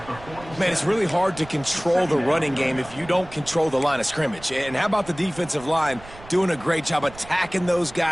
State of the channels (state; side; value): noise; right; rumble, 18 dB below the sound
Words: Man, it's really hard to control the running game if you don't control the line of scrimmage. And how about the defensive line doing a great job attacking those